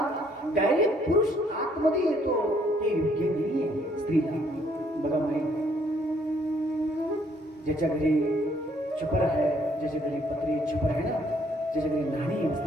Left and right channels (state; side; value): normal; both; correlation 0.66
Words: डायरेक्ट पुरुष आतमध्ये येतो ते योग्य नाहीये स्त्रीला. बघा माहिती ज्याच्या घरी छपर आहे, ज्याच्या घरी पत्री छपर आहे ना, ज्याच्या घरी नाणी